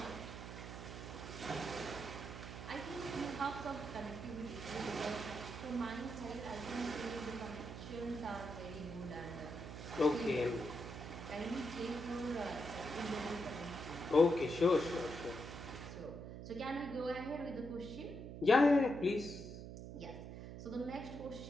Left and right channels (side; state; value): right; noise; hum, 9 dB below the sound